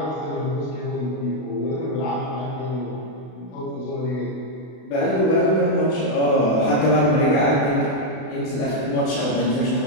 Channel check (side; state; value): right; late; 32 ms